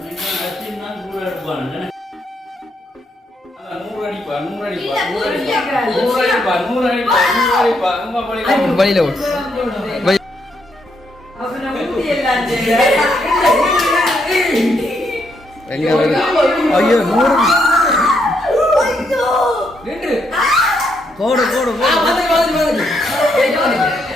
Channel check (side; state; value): both; normal; correlation 0.76